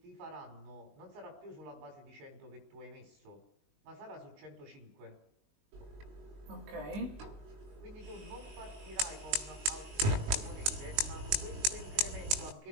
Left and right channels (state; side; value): late; left; 19 ms